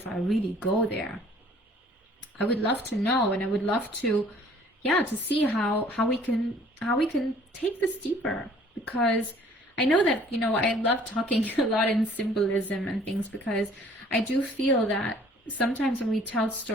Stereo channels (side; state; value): both; normal; correlation 0.55